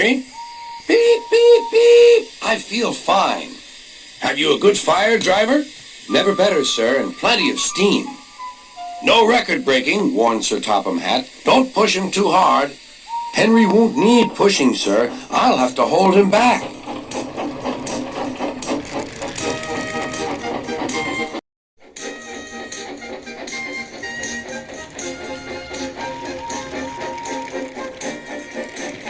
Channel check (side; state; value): both; identical; correlation 1.00